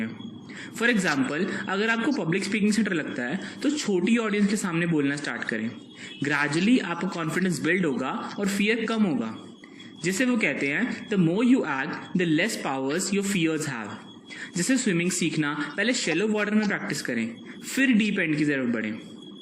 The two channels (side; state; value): both; identical; correlation 1.00